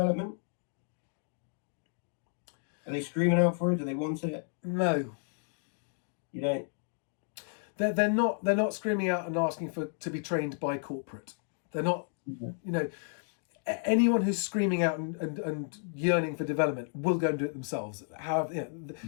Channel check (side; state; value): right; silent; 56 dB below the other